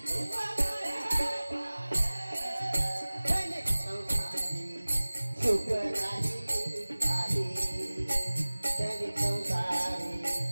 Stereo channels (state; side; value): inverted; both; correlation -1.00